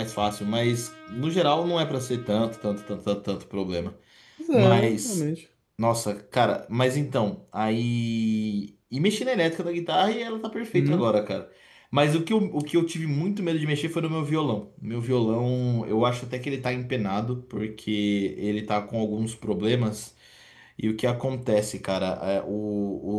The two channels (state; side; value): identical; both; correlation 1.00